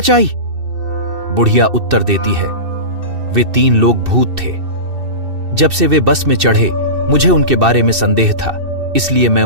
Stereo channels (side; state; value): left; late; 2.6 ms